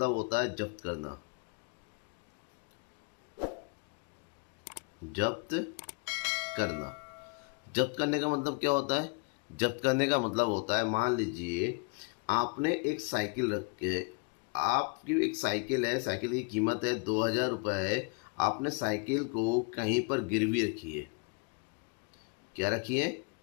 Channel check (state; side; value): quieter; right; 34.7 dB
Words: होता है जब्त करना। जब्त करना, जब्त करने का मतलब क्या होता है? जब्त करने का मतलब होता है, मान लीजिए आपने एक साइकिल रख के, आपकी एक साइकिल है, साइकिल की कीमत है 2000 रुपये है। आपने साइकिल को कहीं पर गिरवी रखी है। क्या रखी है?